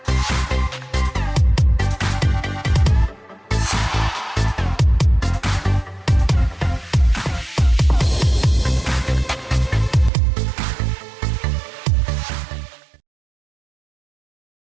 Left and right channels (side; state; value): left; drops out; at 10.1 s